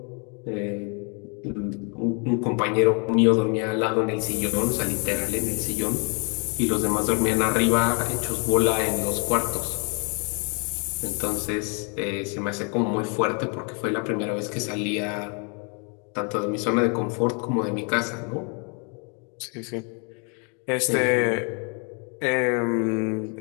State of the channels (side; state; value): right; quieter; 36.9 dB